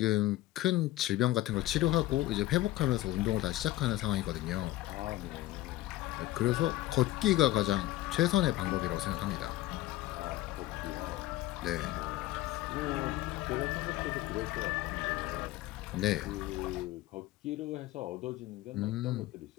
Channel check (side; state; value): right; quieter; 16.3 dB